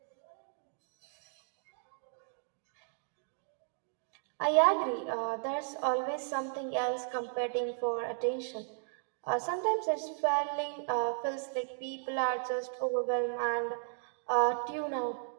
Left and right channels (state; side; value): silent; left; digital silence